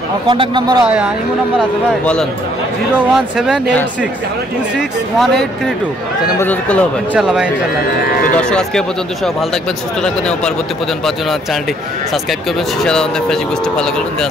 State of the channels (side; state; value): both; normal; correlation 0.65